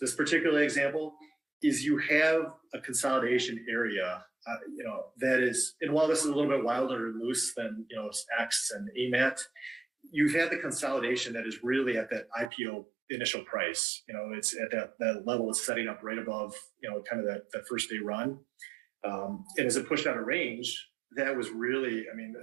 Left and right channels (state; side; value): drops out; left; at 12.5 s